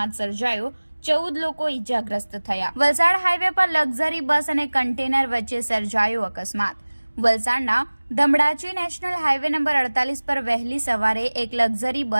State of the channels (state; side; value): inverted; both; correlation -1.00